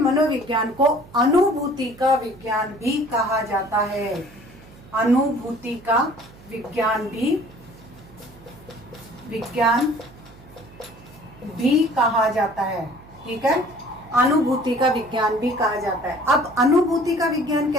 को अनुभूति का विज्ञान भी कहा जाता है। अनुभूति का विज्ञान भी कहा जाता है, ठीक है। अनुभूति का विज्ञान भी कहा जाता है। अब अनुभूति का विज्ञान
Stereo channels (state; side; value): noise; right; hum, 22 dB below the sound